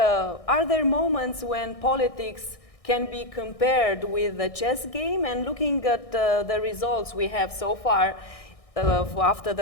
Are there moments when politics can be compared with the chess game? And looking at the results we have so far after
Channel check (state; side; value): late; right; 1.6 ms